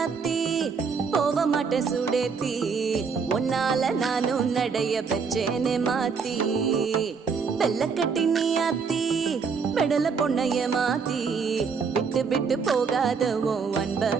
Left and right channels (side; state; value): left; quieter; 5.6 dB